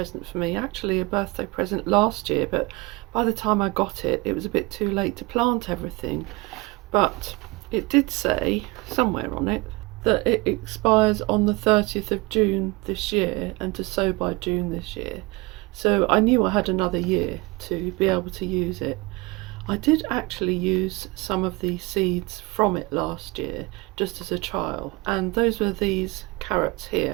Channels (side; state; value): left; quieter; 24.0 dB